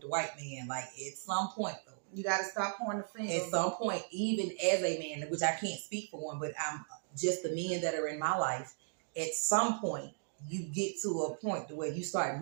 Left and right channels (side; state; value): left; silent; digital silence